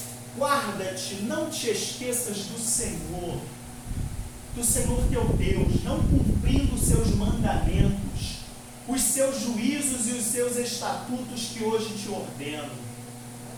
guarda-te, não te esqueças do Senhor teu Deus, não cumprindo os seus mandamentos, os seus juízos e os seus estatutos que hoje te ordeno,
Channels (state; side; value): identical; both; correlation 1.00